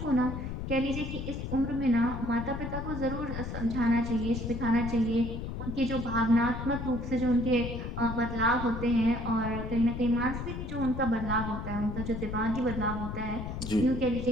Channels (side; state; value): left; noise; rumble, 6 dB below the sound